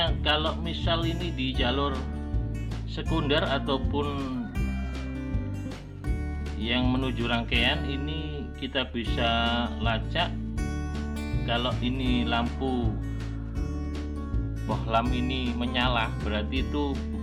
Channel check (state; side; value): identical; both; correlation 1.00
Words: kalau misal ini di jalur sekunder ataupun yang menuju rangkaian, ini kita bisa lacak kalau ini lampu bohlam ini menyala, berarti itu